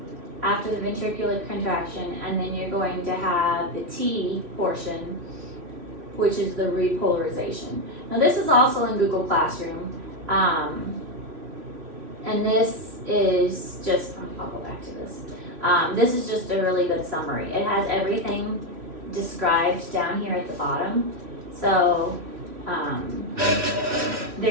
after the ventricular contraction, and then you're going to have the T portion, which is the repolarization. Now this is also in Google Classroom, and this is just, I'll go back to this. This is just a really good summary. It has everything described down here at the bottom. So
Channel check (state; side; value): late; left; 3.1 ms